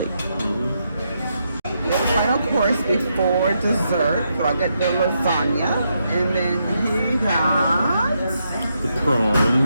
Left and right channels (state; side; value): inverted; both; correlation -0.81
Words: We have a final course before dessert. So I got the lasagna. And then he got The